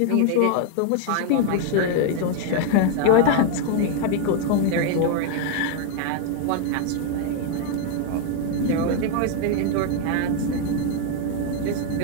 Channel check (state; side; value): different; both; correlation 0.00